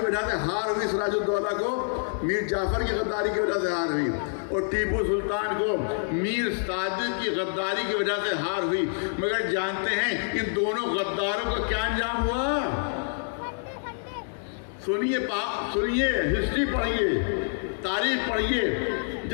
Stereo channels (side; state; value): right; silent; digital silence